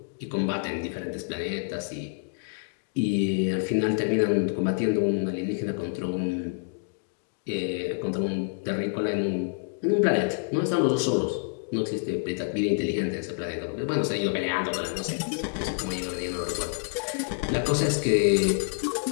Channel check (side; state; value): right; silent; digital silence